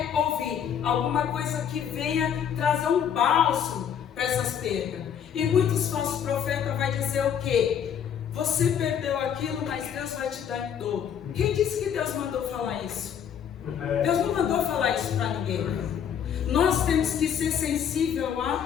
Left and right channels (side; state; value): right; quieter; 8.5 dB